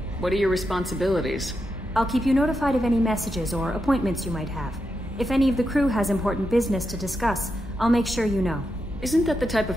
What are your responsibilities? I'll keep you notified of any messages or appointments you might have. If any of the crew has important business to discuss, I'll make sure you know. Isn't that the type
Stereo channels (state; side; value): normal; both; correlation 0.86